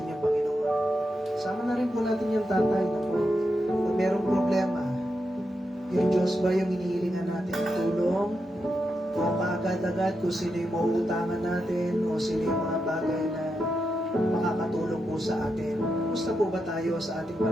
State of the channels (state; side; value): normal; both; correlation 0.86